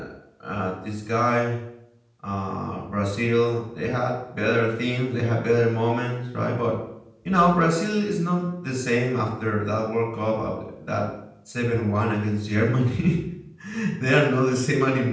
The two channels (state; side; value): identical; both; correlation 1.00